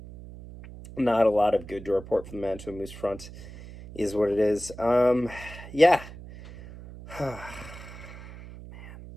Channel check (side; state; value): right; noise; hum, 15 dB below the sound